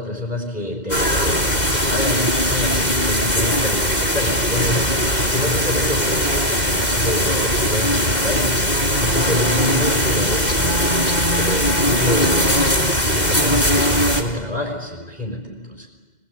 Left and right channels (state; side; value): late; right; 2.0 ms